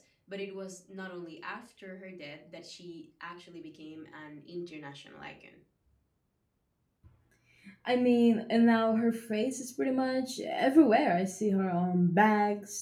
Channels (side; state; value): both; identical; correlation 1.00